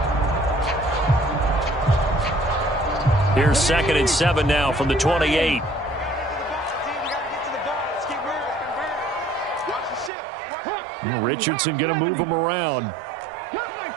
Here's 2nd and 7 now from the 28. Richardson going to move him around.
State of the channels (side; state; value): left; drops out; at 10.1 s